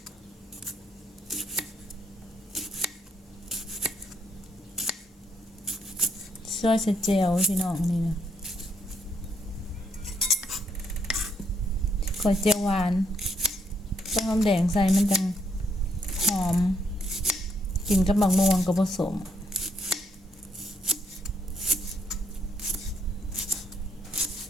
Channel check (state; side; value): normal; both; correlation 0.73